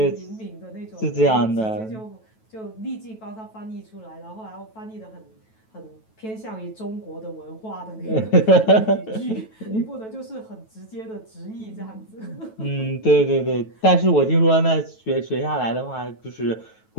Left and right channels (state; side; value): late; right; 9.2 ms